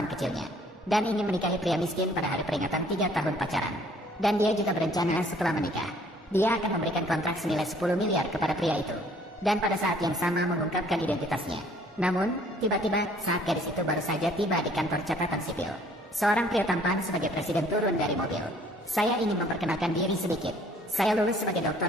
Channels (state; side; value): normal; both; correlation 0.58